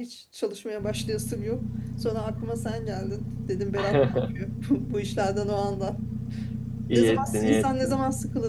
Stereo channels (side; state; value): both; identical; correlation 1.00